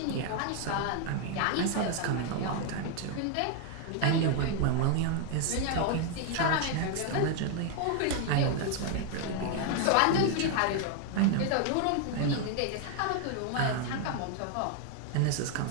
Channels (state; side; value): different; both; correlation 0.00